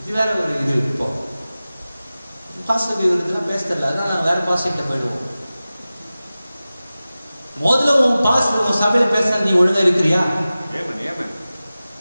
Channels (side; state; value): both; inverted; correlation -0.96